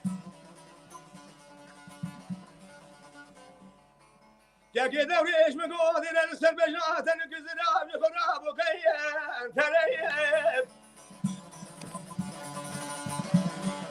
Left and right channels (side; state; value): both; identical; correlation 1.00